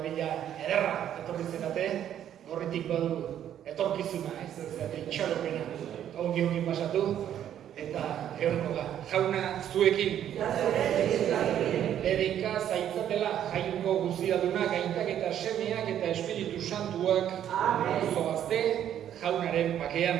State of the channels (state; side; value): quieter; left; 10.4 dB